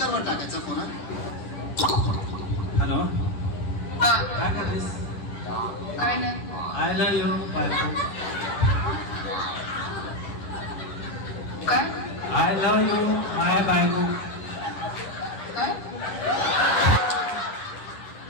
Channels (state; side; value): late; right; 10 ms